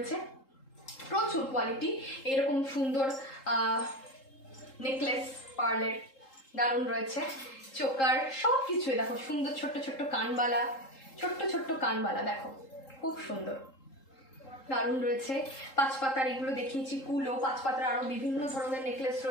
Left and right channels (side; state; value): right; late; 3.7 ms